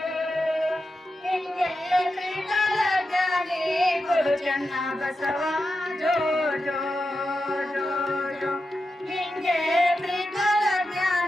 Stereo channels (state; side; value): normal; both; correlation 0.90